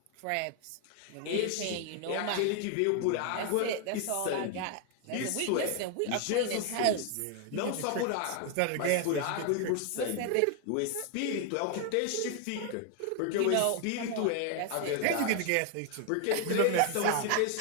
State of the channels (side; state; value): both; different; correlation 0.01